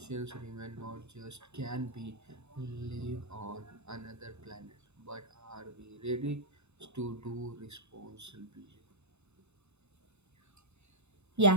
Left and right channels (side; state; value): left; late; 0.81 ms